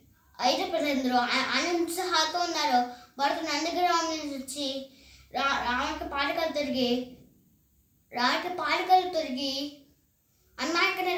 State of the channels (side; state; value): both; identical; correlation 1.00